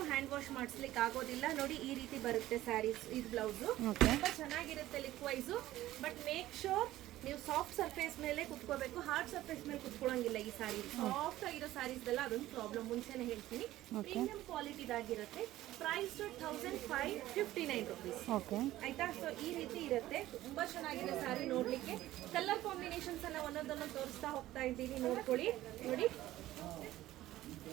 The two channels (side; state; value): left; quieter; 15.2 dB